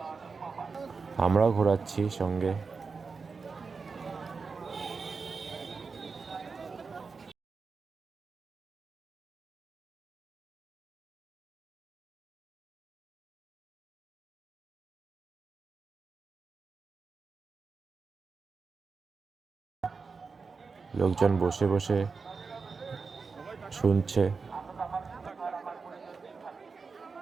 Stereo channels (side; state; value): left; quieter; 4.8 dB